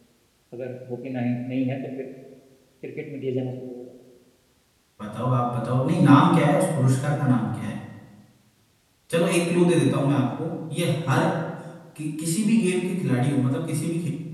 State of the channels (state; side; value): identical; both; correlation 1.00